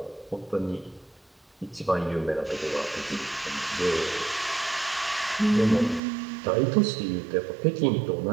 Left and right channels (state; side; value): drops out; left; at 6.0 s